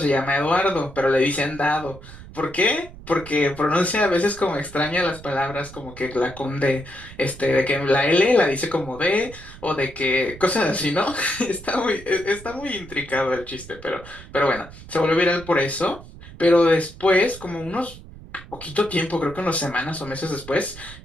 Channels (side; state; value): right; noise; rumble, 17 dB below the sound